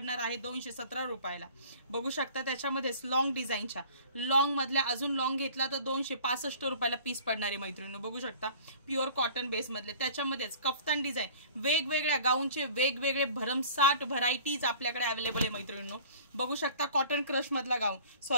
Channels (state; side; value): inverted; both; correlation -0.47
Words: आहे 217 रुपयाला। बघू शकता त्याच्यामध्येच लॉंग डिझाईनच्या, लॉंग मधल्या अजून लॉंग घेतला तर 265 रुपयाला पीस पडणार आहे। मैत्रिणींनो बघू शकता प्युअर कॉटन बेस मधले, त्याच्यामध्येच कफ्तान डिझाईन, वेगवेगळ्या गाऊनचे वेगवेगळे भरमसाठ व्हरायटीज आपल्याकडे अवेलेबल आहे। मैत्रिणींनो बघू शकता कॉटन क्रश मधला गाऊन,